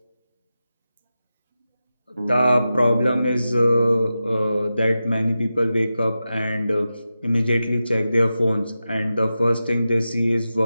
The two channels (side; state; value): both; inverted; correlation -0.92